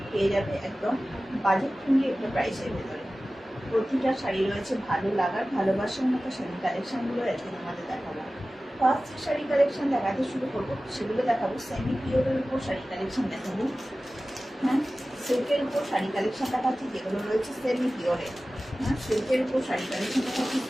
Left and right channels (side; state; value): both; normal; correlation 0.96